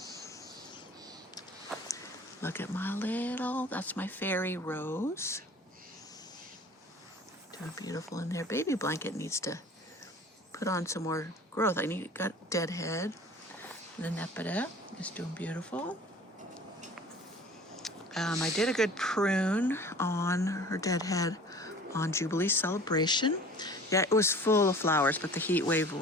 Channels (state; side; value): normal; both; correlation 0.45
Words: Look at my that's my fairy rose. Doing beautiful in there. Baby blanket needs to put on some more growth. Got deadhead. The Nepeta is doing beautiful. I did a good prune on her deadhead on Jubilee Celebration. Yeah, it was full of flowers, but the heat wave